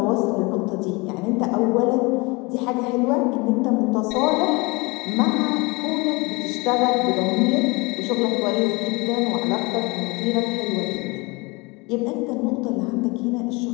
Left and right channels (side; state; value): right; quieter; 26.0 dB